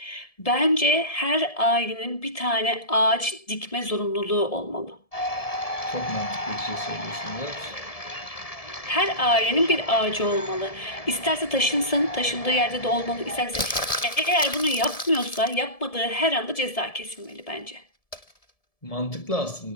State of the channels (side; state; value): right; late; 1.7 ms